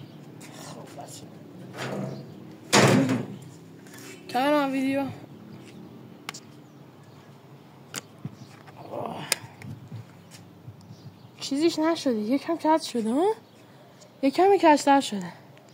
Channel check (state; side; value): identical; both; correlation 1.00